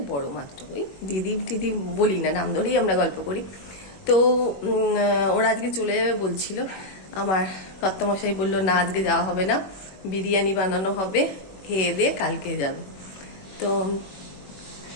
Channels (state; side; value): late; right; 21 ms